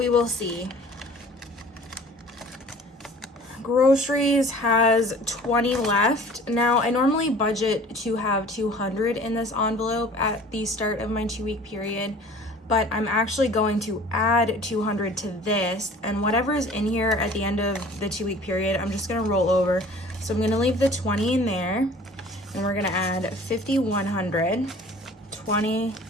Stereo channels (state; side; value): normal; both; correlation 0.47